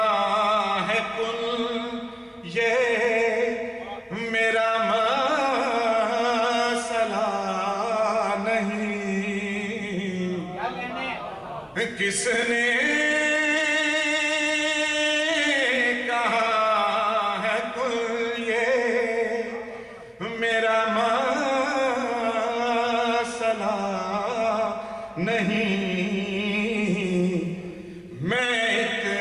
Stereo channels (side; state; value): both; identical; correlation 1.00